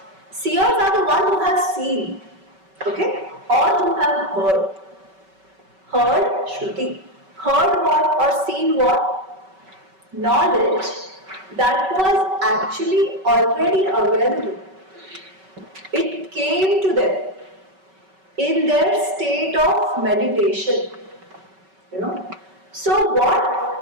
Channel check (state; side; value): late; left; 5.3 ms